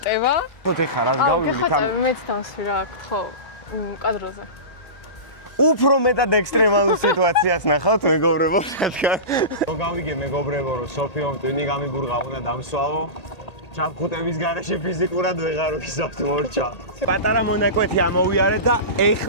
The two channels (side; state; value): right; late; 1.8 ms